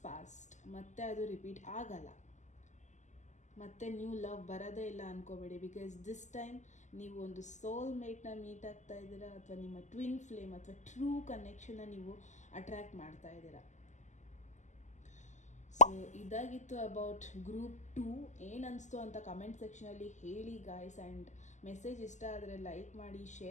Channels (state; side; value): late; right; 0.34 ms